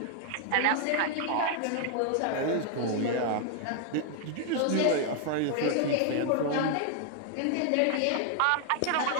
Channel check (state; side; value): different; both; correlation 0.00